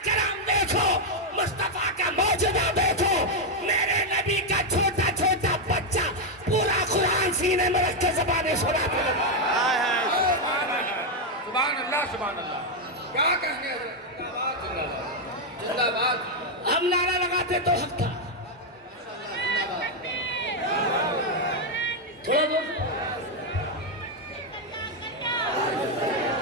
کرم دیکھو، مصطفیٰ کا معجزہ دیکھو، میرے نبی کا چھوٹا چھوٹا بچہ پورا قرآن سینے میں رکھ کے زبانیں سناتے ہیں۔ سبحان اللہ سبحان اللہ، کیا کہنے حضرت، زندہ باد۔ ہم نعرہ لگاتے تو حق تھا، تھوڑا دور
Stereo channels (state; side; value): normal; both; correlation 0.01